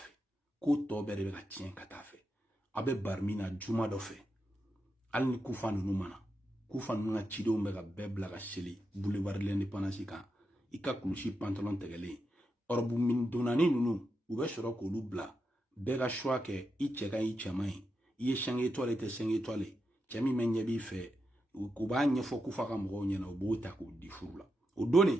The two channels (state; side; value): normal; both; correlation 0.86